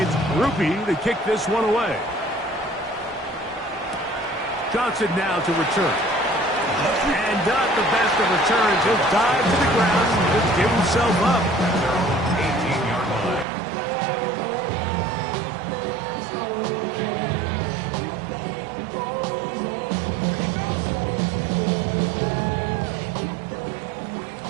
Rupi to kick this one away. Johnson now to return. And not the best of returns. He'll dive to the ground and just give himself up. 18-yard line.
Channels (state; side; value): drops out; left; at 13.5 s